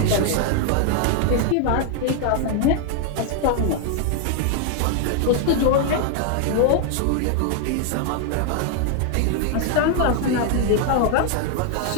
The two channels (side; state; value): both; different; correlation 0.00